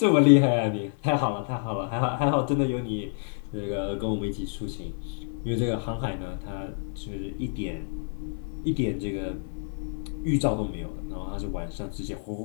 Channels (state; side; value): silent; right; 59 dB below the other